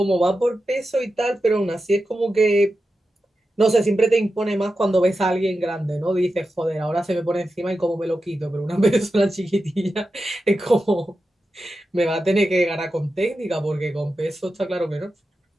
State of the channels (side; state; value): both; normal; correlation 0.91